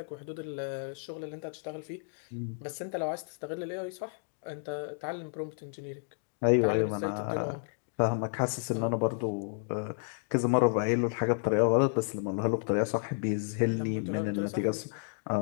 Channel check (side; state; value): right; silent; digital silence